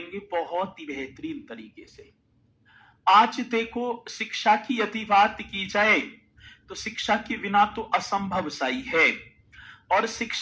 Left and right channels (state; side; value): identical; both; correlation 1.00